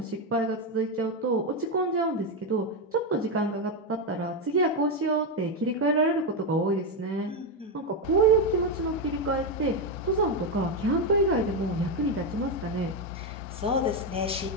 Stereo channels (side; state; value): both; normal; correlation 0.07